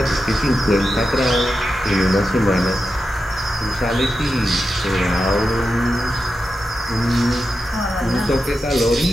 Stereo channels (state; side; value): normal; both; correlation 0.89